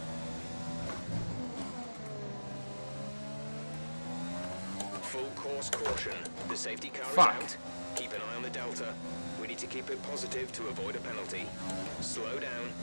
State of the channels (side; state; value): both; inverted; correlation -1.00